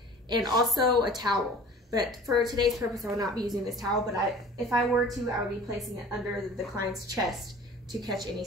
and also a towel. But for today's purpose, I will not be using this towel, but if I were to, I would be placing it under the client's chest to catch any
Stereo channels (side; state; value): both; normal; correlation 0.45